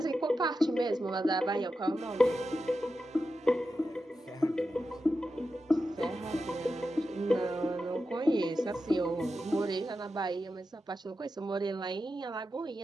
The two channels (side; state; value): both; normal; correlation 0.90